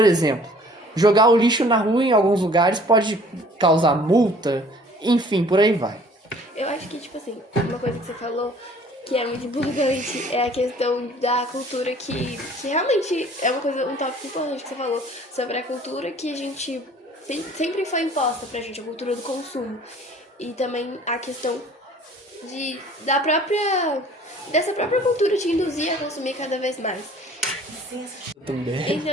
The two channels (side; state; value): both; normal; correlation 0.53